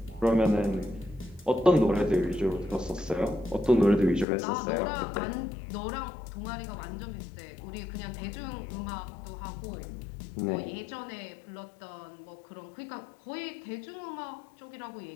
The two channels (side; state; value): right; drops out; at 4.2 s